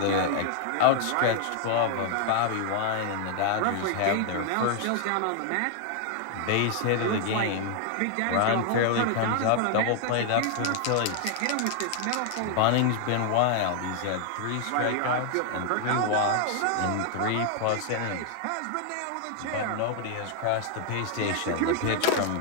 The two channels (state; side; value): different; both; correlation 0.00